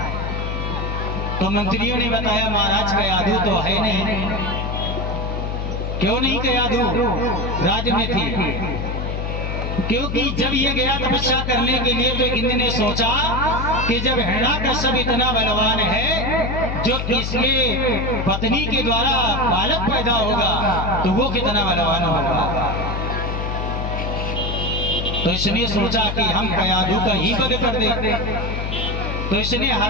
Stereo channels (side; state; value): left; noise; hum, 3 dB below the sound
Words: तो मंत्रियों ने बताया महाराज कयाधु तो है नहीं। क्यों नहीं कयाधु राज्य में थी? क्योंकि जब ये गया तपस्या करने के लिए तो इंद्र ने सोचा कि जब हिरण्याकश्यप इतना बलवान है, जो इसके पत्नी के द्वारा बालक पैदा होगा तो वो कितना बलवान होगा। तो इसने सोचा कि हम कयाधु का ही वध कर दे। तो इसने